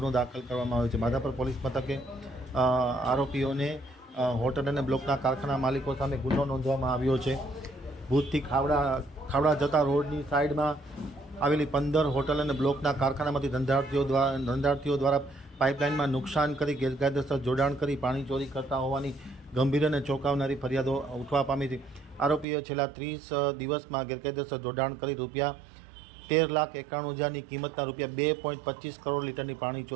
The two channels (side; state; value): left; drops out; at 22.5 s